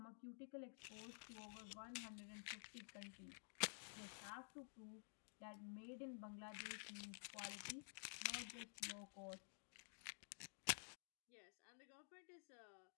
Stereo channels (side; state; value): right; silent; digital silence